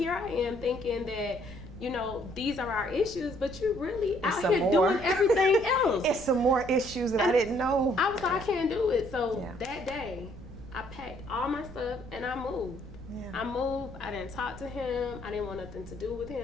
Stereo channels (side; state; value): right; noise; rumble, 15 dB below the sound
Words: I am thinking that, you know, these are our issues, but you're really out here doing everything else. It's some more issues that I didn't know. I was like, I can't do it. So that day, I packed all my stuff and I moved. I moved. I didn't talk to him. I didn't want nothing to do with